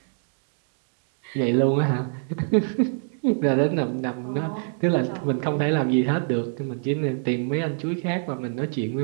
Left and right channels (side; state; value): left; silent; digital silence